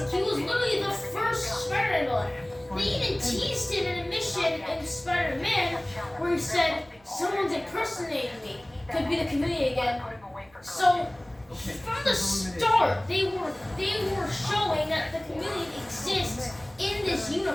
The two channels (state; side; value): noise; right; rumble, 28 dB below the sound